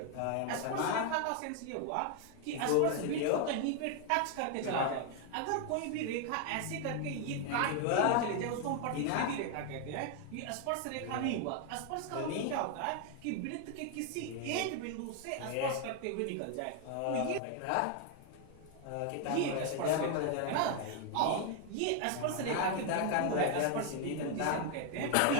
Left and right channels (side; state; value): both; different; correlation 0.00